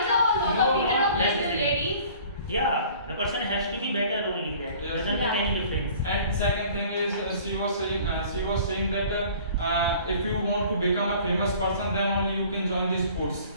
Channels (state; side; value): inverted; both; correlation -0.50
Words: Not necessarily. Yeah, the person has to be better only. That Yes. doesn't make any difference. And second thing is she was saying that if you want to become a famous person, then only you can join the sports,